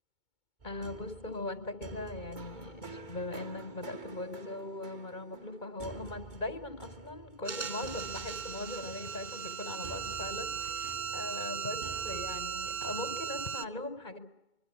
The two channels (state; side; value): late; right; 2.2 ms